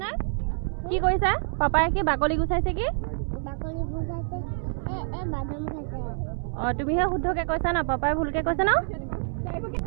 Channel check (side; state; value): left; silent; digital silence